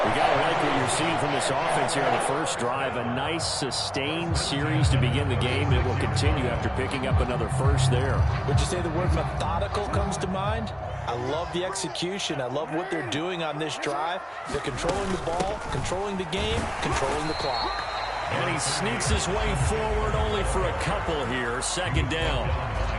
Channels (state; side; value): identical; both; correlation 1.00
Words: We got to like what you're seeing from this offense here on the first drive. A nice, sustained series to begin the game. It will continue after picking up another 1st there. Would you say the word methodical comes to mind? I love the execution. I love what they're doing on this drive. They're controlling the ball, controlling the game, controlling the clock. And he sneaks his way forward only for a couple here. 2nd down.